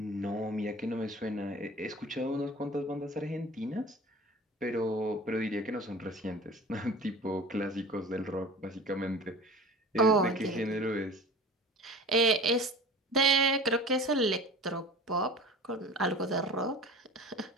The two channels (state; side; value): normal; both; correlation 0.39